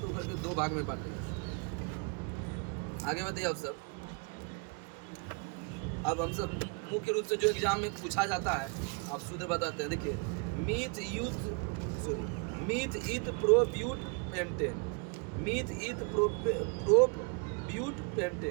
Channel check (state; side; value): quieter; left; 34.6 dB